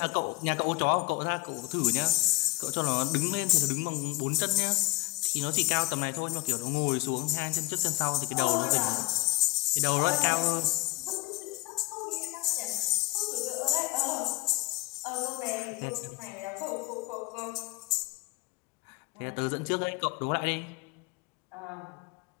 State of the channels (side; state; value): right; quieter; 21.8 dB